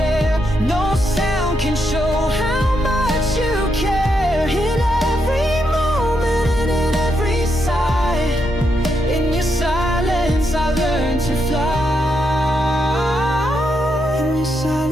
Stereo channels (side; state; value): both; normal; correlation 0.81